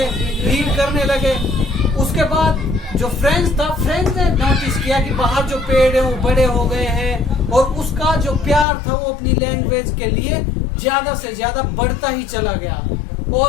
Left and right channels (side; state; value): right; drops out; at 8.7 s